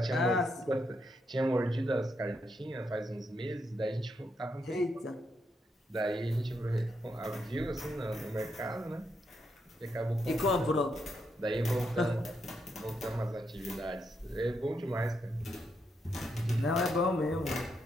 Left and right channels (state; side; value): normal; both; correlation 0.80